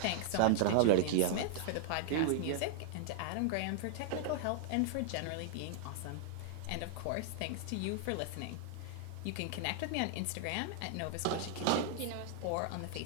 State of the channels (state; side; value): different; both; correlation -0.01